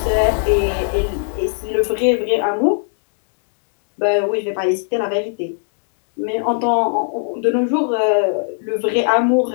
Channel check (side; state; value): right; silent; digital silence